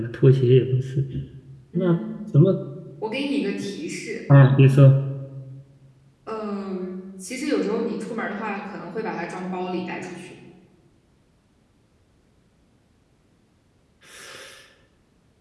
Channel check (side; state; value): both; identical; correlation 1.00